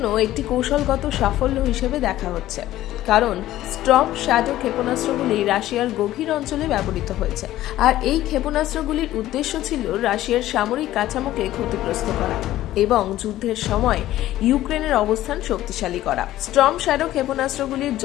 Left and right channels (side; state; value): right; quieter; 14.4 dB